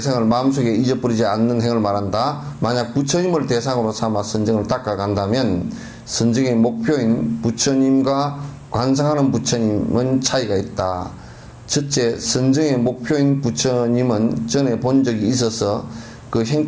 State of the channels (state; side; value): identical; both; correlation 1.00